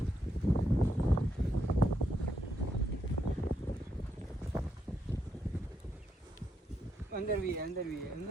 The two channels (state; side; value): normal; both; correlation 0.80